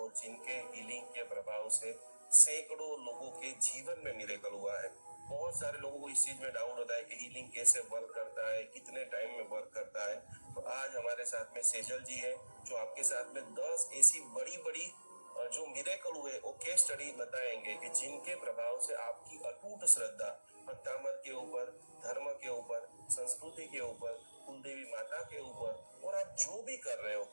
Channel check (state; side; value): inverted; both; correlation -1.00